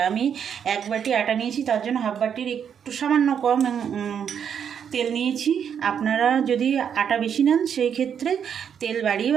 আমি এক বাটি আটা নিয়েছি, তার জন্য হাফ বাটির একটু সামান্য কম তেল নিয়েছি। আপনারা যদি আটা বেশি নেন সেই ক্ষেত্রে তেল বাড়িয়ে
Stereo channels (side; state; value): left; quieter; 8.0 dB